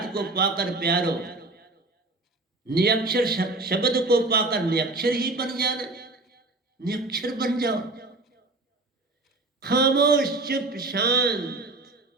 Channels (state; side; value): quieter; left; 3.1 dB